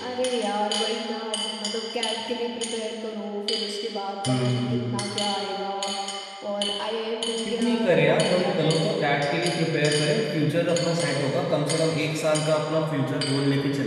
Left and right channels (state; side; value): identical; both; correlation 1.00